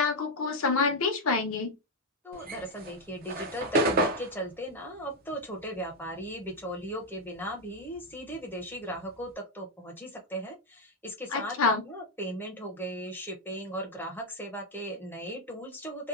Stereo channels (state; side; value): normal; both; correlation 0.03